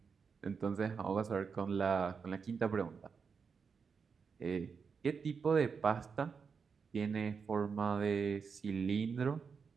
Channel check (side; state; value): left; quieter; 5.7 dB